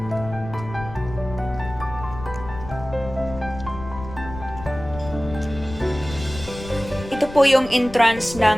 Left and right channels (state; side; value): noise; left; rumble, 12 dB below the sound